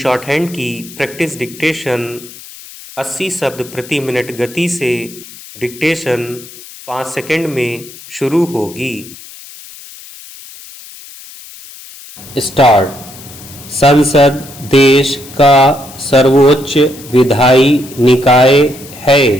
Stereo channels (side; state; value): left; noise; hiss, 18 dB below the sound